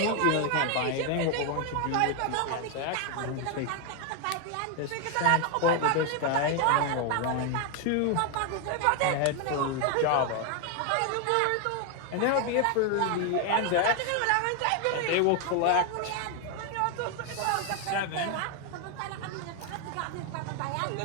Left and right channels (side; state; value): both; different; correlation 0.01